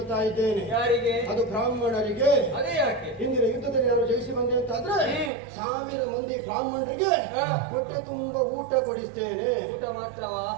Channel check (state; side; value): drops out; left; at 5.3 s